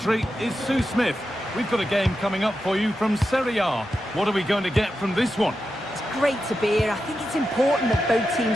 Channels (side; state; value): both; normal; correlation 0.89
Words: is Sue Smith. We've got a game coming up for you from Serie A. What are we going to get from this one? It's great to be here. I think it's important that both